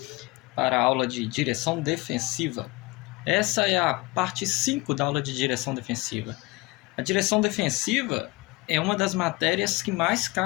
Para a aula de direção defensiva. Essa é a parte 5 da aula de direção defensiva. A direção defensiva é uma das matérias que mais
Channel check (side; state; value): right; quieter; 23.0 dB